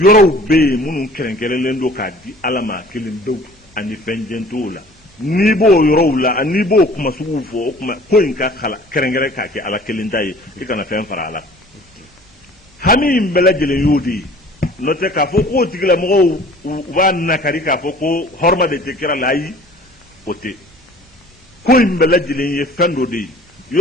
bɛ yen minnu kɛrɛnkɛrɛnlen don k'a di ala ma kelen dɔw ani fɛn jɛn t'o la n'i b'o yɔrɔw la n'i b'o kuma suguw fɔ o kuma ko in ka kala kɛrɛnkɛrɛn k'a kɛ ala kelen ta ye i kana fɛn fara a la hami in bɛɛ lajɛlen y'o de ye n'o tɛ k'a fɔ k'o tigilamɔgɔw u b'a nakari k'a fɔ ko hɔrɔma de tɛ kira la ayi o tɛ ko in bɛɛ lajɛlen ye fɛn dɔ de ye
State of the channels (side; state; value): both; normal; correlation 0.49